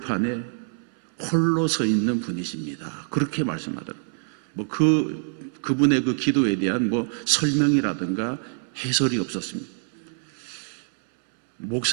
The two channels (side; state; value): left; silent; 62 dB below the other